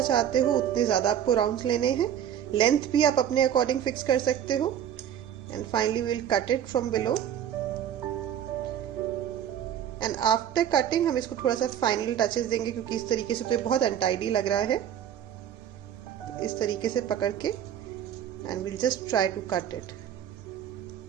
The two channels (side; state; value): left; quieter; 9.9 dB